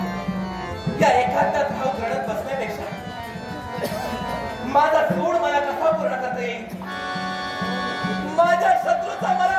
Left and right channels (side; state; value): both; identical; correlation 1.00